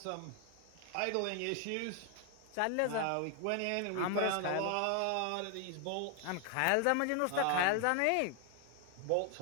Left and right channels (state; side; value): different; both; correlation 0.00